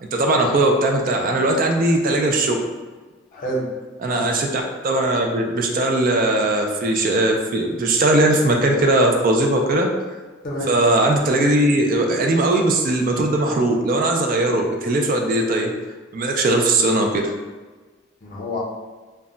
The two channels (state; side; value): normal; both; correlation 0.32